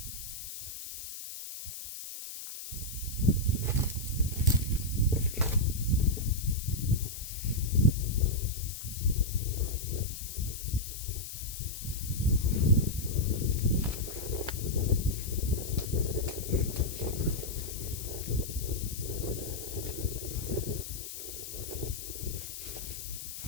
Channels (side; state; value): left; noise; hiss, 9 dB below the sound